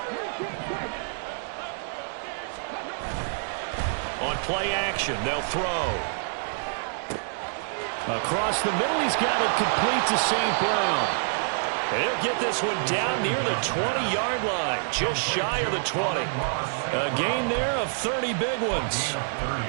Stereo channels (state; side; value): silent; left; digital silence